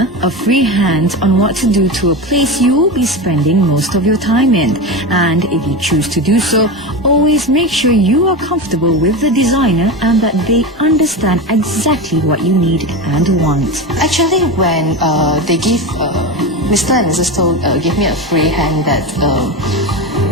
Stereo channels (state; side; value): normal; both; correlation 0.22